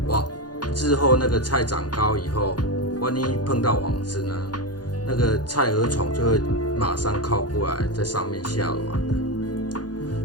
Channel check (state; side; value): late; right; 0.69 ms